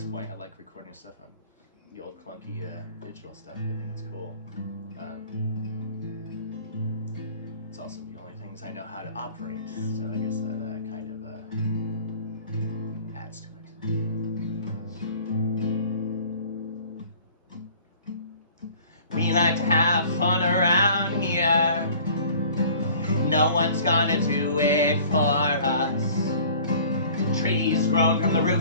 point, I like recording stuff on the old clunky digital stuff. I think it's cool. It's also the only things I know how to operate, so I guess that kind of adds to it. We like to have fun around here. No one's gonna do it for us. Trees grown from the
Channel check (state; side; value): inverted; both; correlation -0.49